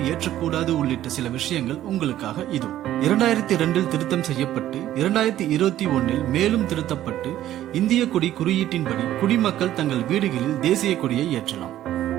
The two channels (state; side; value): quieter; left; 12.9 dB